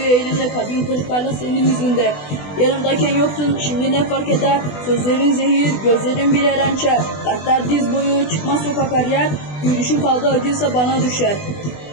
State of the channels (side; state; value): right; late; 20 ms